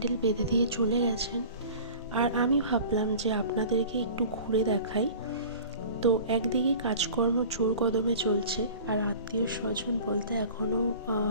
বেঁধে দিয়ে চলে গেছেন, আর আমি ভাবলাম যে আপনাদেরকে একটু ঘুরে দেখাই। তো একদিকে কাজকর্ম জোর কদমে চলছে, আর আত্মীয় স্বজন বলতে এখনও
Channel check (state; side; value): inverted; both; correlation -0.42